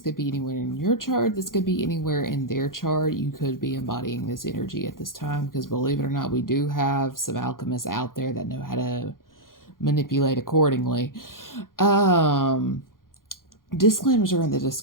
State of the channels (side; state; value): right; late; 0.91 ms